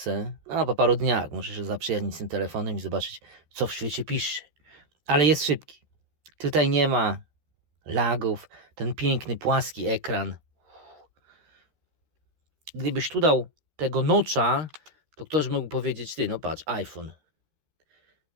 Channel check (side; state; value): left; late; 13 ms